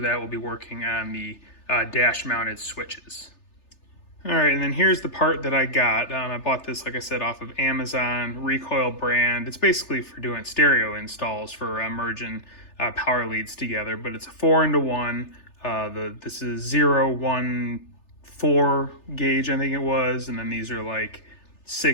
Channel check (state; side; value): late; right; 3.3 ms